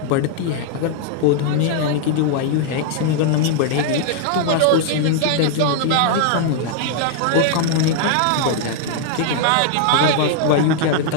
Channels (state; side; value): different; both; correlation 0.00